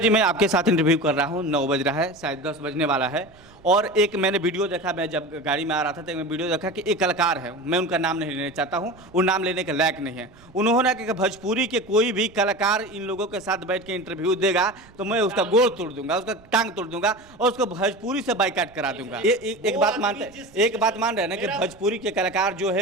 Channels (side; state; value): right; noise; rumble, 25 dB below the sound